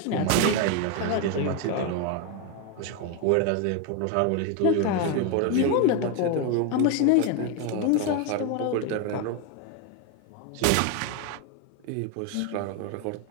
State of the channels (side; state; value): both; different; correlation 0.02